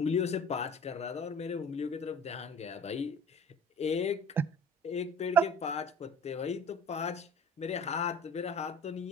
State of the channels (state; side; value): normal; both; correlation 0.43